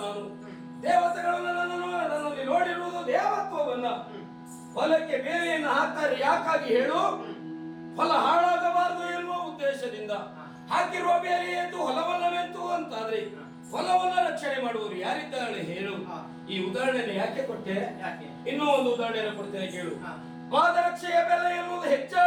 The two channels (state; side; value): identical; both; correlation 1.00